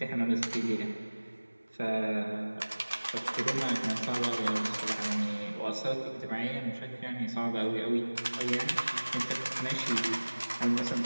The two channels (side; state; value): both; inverted; correlation -1.00